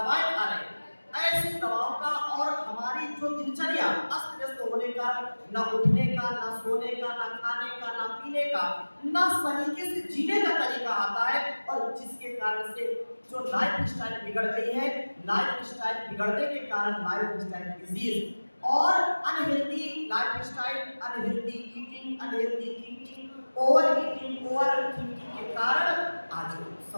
खा रहे हैं, ऐसी दवाओं का और हमारी जो दिनचर्या अस्त व्यस्त होने का, न उठने का, न सोने का, न खाने का, न पीने का, न तरीके से जीने का तरीका आता है, और जिसके कारण से जो लाइफ स्टाइल बिगड़ गई है, लाइफ स्टाइल बिगड़ने के कारण लाइफ स्टाइल डिजीज और unhealthy life style, unhealthy eating, unhealthy thinking, over eating, over thinking के कारण आज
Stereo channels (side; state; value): both; inverted; correlation -1.00